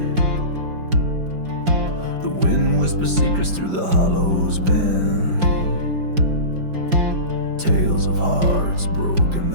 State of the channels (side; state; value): left; late; 5.0 ms